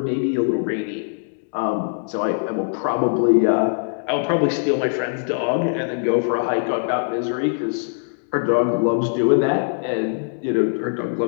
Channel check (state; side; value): silent; right; digital silence